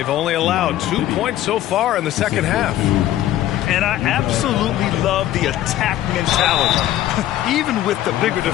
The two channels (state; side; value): quieter; right; 13.3 dB